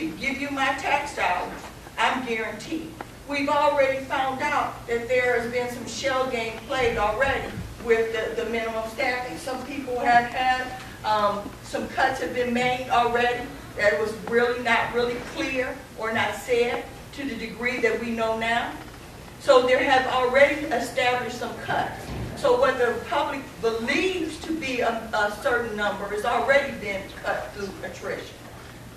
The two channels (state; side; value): identical; both; correlation 1.00